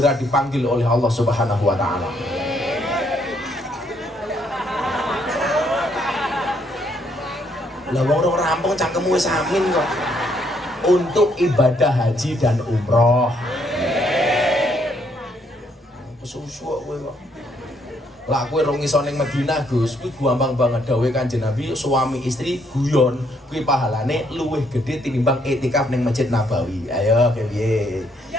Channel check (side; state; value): both; normal; correlation 0.71